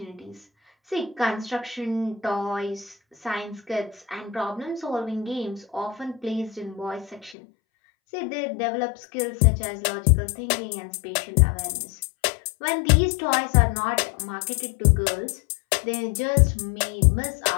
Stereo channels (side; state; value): right; drops out; at 7.4 s